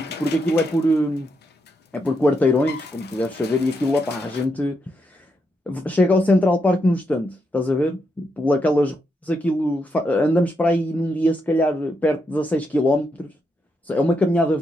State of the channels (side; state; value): both; normal; correlation 0.81